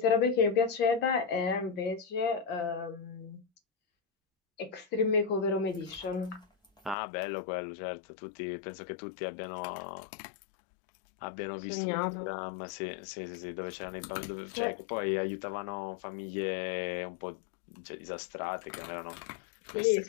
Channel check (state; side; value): drops out; right; at 7.0 s